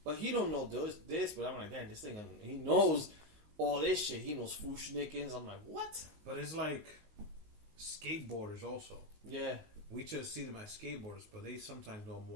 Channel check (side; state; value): left; late; 19 ms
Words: But he don't know this. But I'm like, damn, this thing, he knows all this shit. He knows Fushnikins. I'm like, what? But it's like skateboarders also. Yeah. We just see them as skateboarders, but they sometimes know